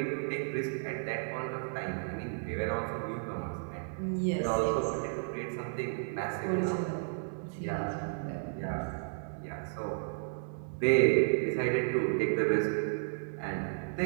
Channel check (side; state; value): left; silent; digital silence